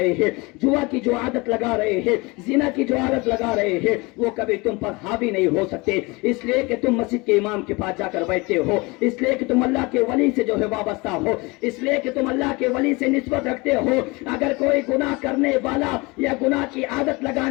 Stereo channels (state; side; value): quieter; right; 25.3 dB